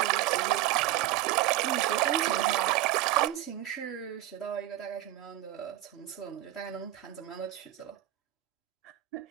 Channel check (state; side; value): quieter; left; 14.5 dB